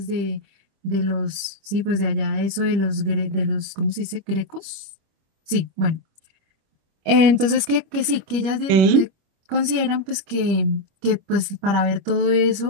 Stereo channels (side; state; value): left; late; 25 ms